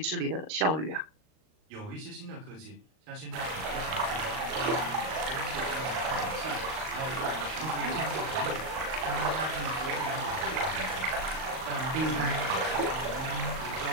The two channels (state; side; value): late; left; 38 ms